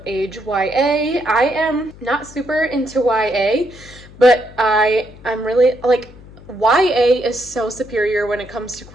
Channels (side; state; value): left; noise; hum, 20 dB below the sound